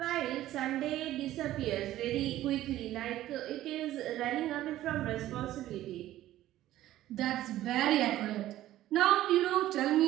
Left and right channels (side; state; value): left; quieter; 14.2 dB